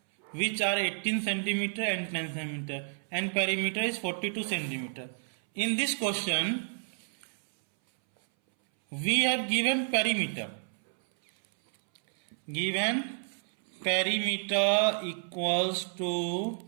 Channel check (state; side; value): silent; left; 58 dB below the other